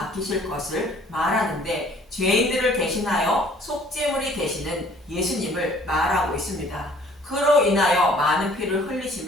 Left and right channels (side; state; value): both; normal; correlation 0.55